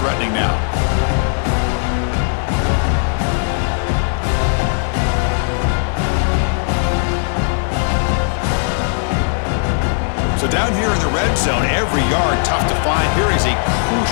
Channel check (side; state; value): right; silent; 62 dB below the other